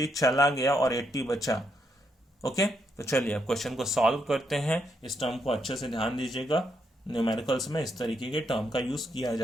चला गया और 80 बचा। ओके, तो चलिए अब क्वेश्चन को सॉल्व करते हैं। इस टर्म को अच्छे से ध्यान दीजिएगा, न्यूमेरिकल्स में इस तरीके के टर्म का यूज किया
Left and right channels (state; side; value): normal; both; correlation 0.78